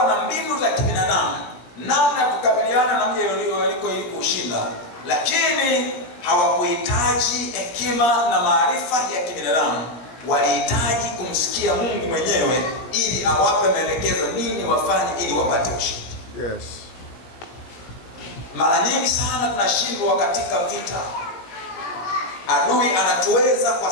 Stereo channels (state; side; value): late; right; 18 ms